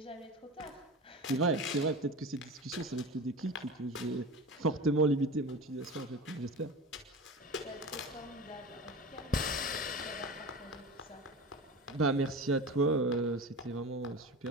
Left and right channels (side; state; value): both; normal; correlation 0.30